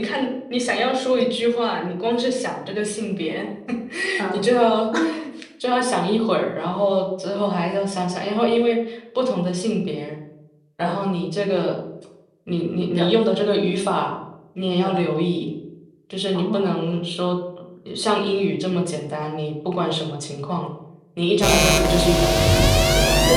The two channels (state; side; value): identical; both; correlation 1.00